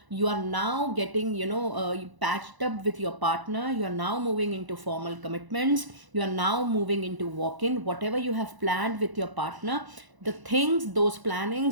getting patched up with your partner. You are now moving into formal commitments. You are now moving into walk-in. Whatever you have planned with your partner, the things, those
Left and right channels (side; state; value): left; late; 1.0 ms